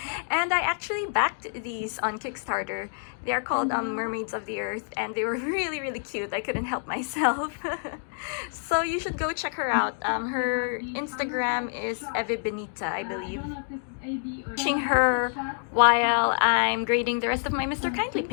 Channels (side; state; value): right; silent; digital silence